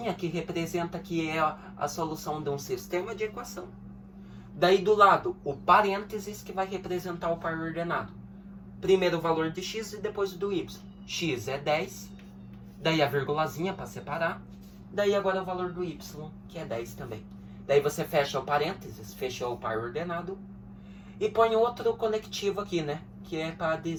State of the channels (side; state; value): both; identical; correlation 1.00